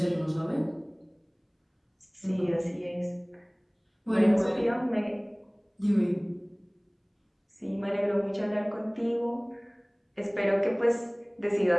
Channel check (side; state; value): both; identical; correlation 1.00